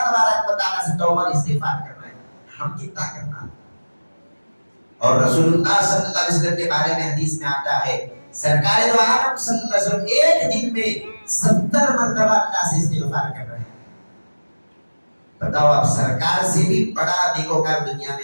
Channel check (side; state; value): both; inverted; correlation -1.00